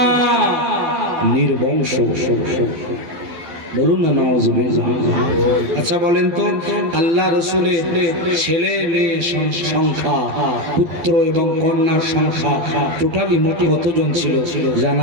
নির্বংশ। বলুন না নাউযুবিল্লাহ। আচ্ছা বলেন তো, আল্লাহ রাসূলের ছেলে মেয়ে সংখ্যা, পুত্র এবং কন্যার সংখ্যা টোটালি মোটে কতজন ছিল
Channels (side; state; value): left; late; 12 ms